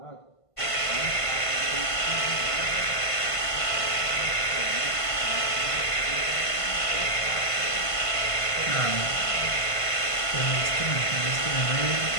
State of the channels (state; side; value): late; right; 1.5 ms